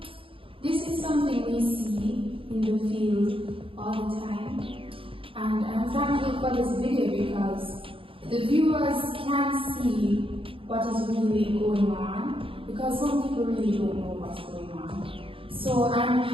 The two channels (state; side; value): late; left; 0.26 ms